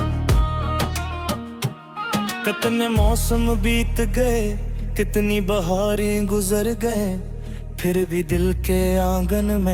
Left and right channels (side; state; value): both; identical; correlation 1.00